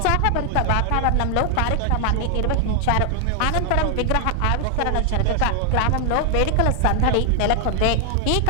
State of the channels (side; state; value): both; different; correlation 0.00